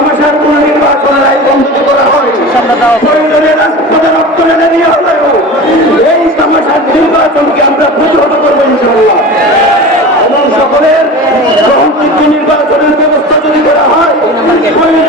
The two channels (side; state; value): both; normal; correlation 0.33